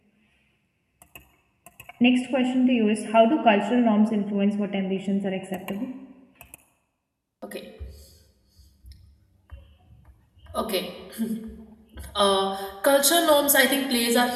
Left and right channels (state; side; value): identical; both; correlation 1.00